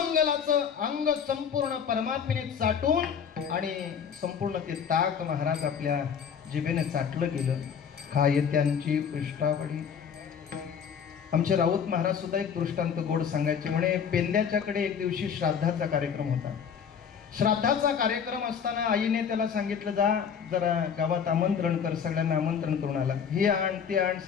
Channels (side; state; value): right; quieter; 7.2 dB